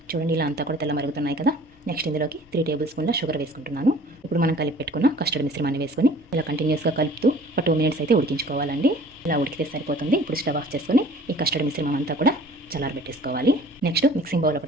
చూడండి, ఇలా అంతా కూడా తెల్ల మరుగుతున్నాయి కదా. నెక్స్ట్ ఇందులోకి 3 టేబుల్ స్పూన్ల షుగర్ వేసుకుంటున్నాను. ఇప్పుడు మనం కలిపి పెట్టుకున్న కస్టర్డ్ మిశ్రమాన్ని వేసుకొని ఇలా కంటిన్యూస్గా కలుపుతూ ఒక 2 మినిట్స్ అయితే ఉడికించుకోవాలండి. ఇలా ఉడికితే సరిపోతుంది. ఇప్పుడు స్టవ్ ఆఫ్ చేసుకొని ఈ కస్టర్డ్ మిశ్రమం అంతా కూడా చల్లారబెట్టేసుకోవాలి. నెక్స్ట్ మిక్సింగ్ బౌల్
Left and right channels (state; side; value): normal; both; correlation 0.49